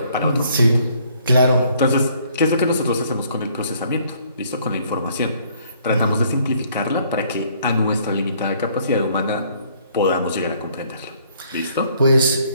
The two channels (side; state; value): both; inverted; correlation -0.63